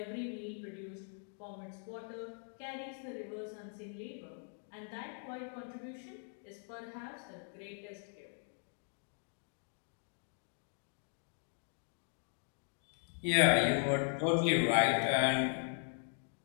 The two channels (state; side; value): silent; right; 52 dB below the other